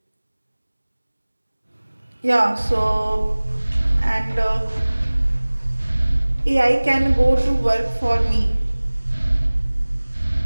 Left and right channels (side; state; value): both; inverted; correlation -1.00